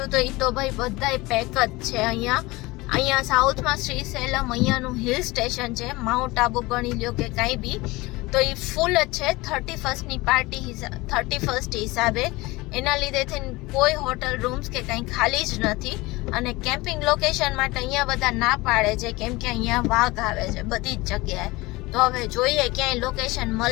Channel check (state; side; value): quieter; right; 21.7 dB